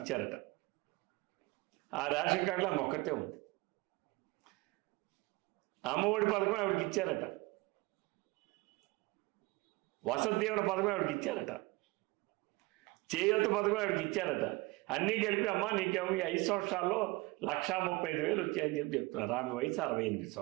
ఇచ్చారట. ఆ రేషన్ కార్డులో ఆమె ఒక్కతే ఉంది. అమ్మ ఒడి పథకం ఆవిడకి ఇచ్చారట. వసతి దీవెన పథకం ఆవిడకి ఇచ్చారట. చేయూత పథకం ఆవిడకి ఇచ్చారట. అన్నీ కలిపి అమ్మ నీకేమో ఈ 5 సంవత్సరాల్లో 1,35,000 వచ్చాయని చెప్తున్నారు. ఆమె వయసు 68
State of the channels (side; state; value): left; quieter; 23.1 dB